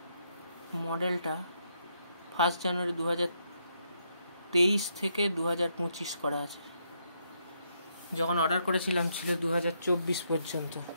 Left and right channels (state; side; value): inverted; both; correlation -0.77